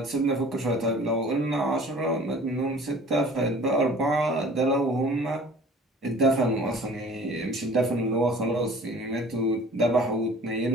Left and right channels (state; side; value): normal; both; correlation 0.47